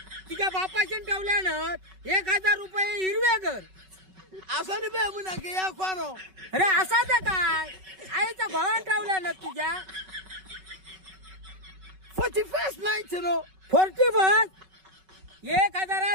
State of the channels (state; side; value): late; left; 5.3 ms